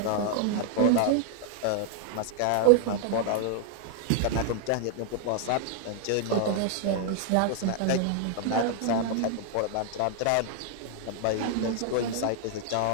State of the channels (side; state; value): both; different; correlation 0.00